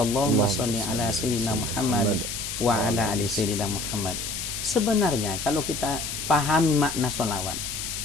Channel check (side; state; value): left; noise; hiss, 5 dB below the sound